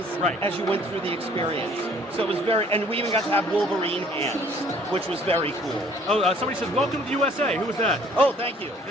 as you went through the experience. So it was and we even got to have Wolverine hands, which was very cool. Oh, somebody said, welcome to the USA. Who was that? Oh, thank you.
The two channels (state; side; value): normal; both; correlation 0.56